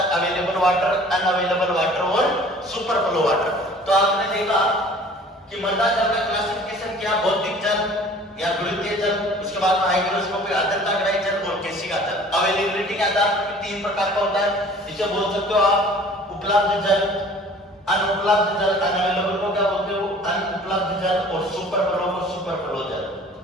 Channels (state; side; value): normal; both; correlation 0.49